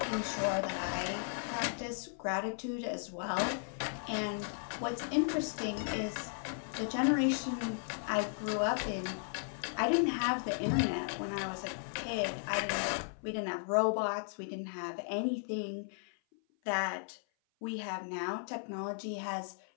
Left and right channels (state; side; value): silent; right; 54 dB below the other